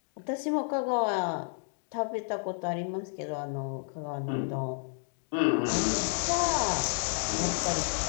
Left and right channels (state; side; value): silent; right; digital silence